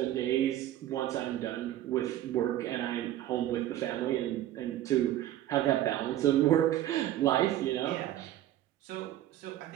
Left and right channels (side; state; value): left; quieter; 13.1 dB